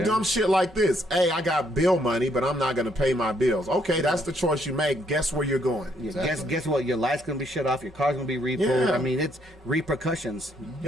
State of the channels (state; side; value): normal; both; correlation 0.70